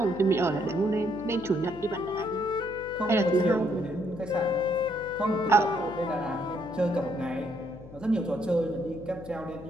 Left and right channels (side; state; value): left; noise; hum, 17 dB below the sound